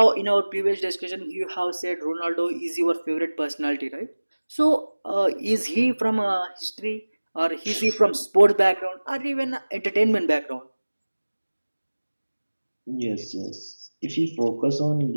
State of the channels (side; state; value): both; inverted; correlation -1.00